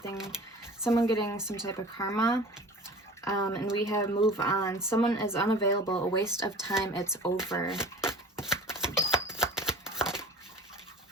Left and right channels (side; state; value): both; normal; correlation 0.41